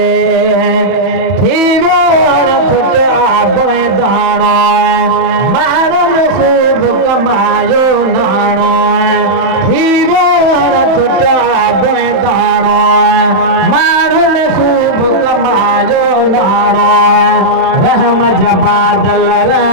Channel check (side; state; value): left; late; 31 ms